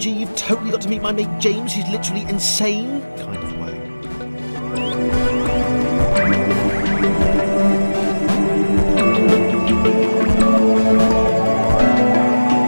you've totally got to meet my mate James, he's literally insane kind of way.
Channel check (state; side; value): inverted; both; correlation -1.00